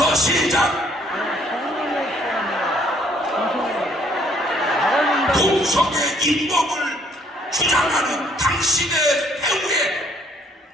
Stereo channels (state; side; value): normal; both; correlation 0.64